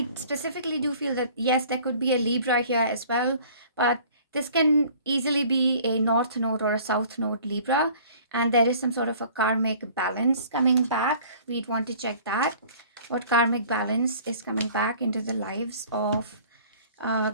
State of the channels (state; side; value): inverted; both; correlation -0.50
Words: specifically do feel that, yes, there could be a Libra here as well, but this can easily be a North Node or a South Node Libra, and there is some sort of a karmic balance coming back. We'd want to check that. What karmic balance is coming back into the lives of